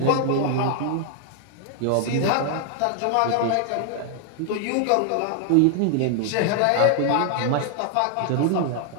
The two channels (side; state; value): both; different; correlation 0.00